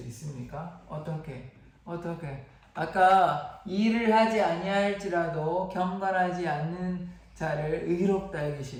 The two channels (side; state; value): both; identical; correlation 1.00